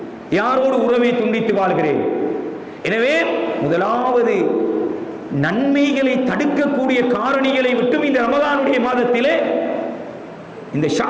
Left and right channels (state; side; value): identical; both; correlation 1.00